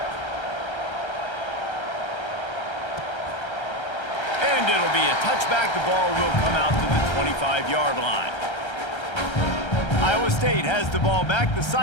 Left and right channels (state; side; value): late; right; 1.3 ms